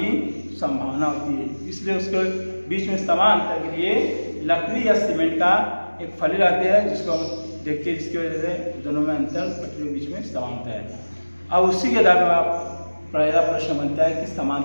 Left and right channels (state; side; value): inverted; both; correlation -1.00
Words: संभावना होती है, इसलिए उसके बीच में समान अंतर के लिए लकड़ी या सीमेंट का एक फली रहते हैं, जिसको हम देखते हैं, जिसकी वजह से दोनों में अंतर, पटरियों के बीच में समानता है। अब उसी के आधार पर आप पहला प्रश्न बनता है कि